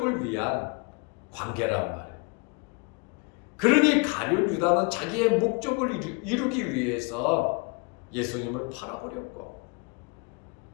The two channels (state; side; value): quieter; right; 31.1 dB